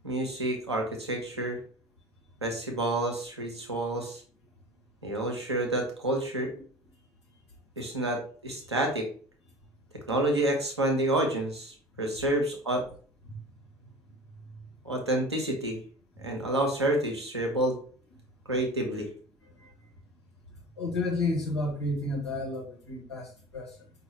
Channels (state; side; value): normal; both; correlation 0.36